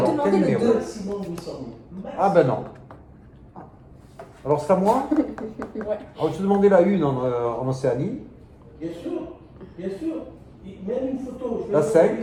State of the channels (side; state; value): both; identical; correlation 1.00